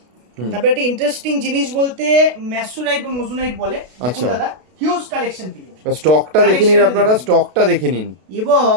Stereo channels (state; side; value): late; left; 32 ms